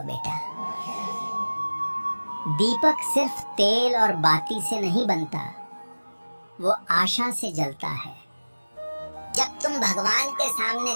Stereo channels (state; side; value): inverted; both; correlation -1.00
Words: बेटा। दीपक सिर्फ तेल और बाती से नहीं बनता, वो आशा से जलता है। जब तुम भगवान के सामने